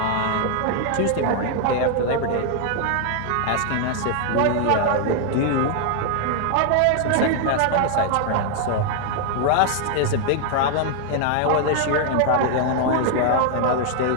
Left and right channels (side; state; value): both; different; correlation 0.00